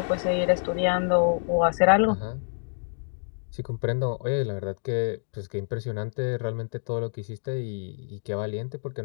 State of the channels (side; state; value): right; silent; digital silence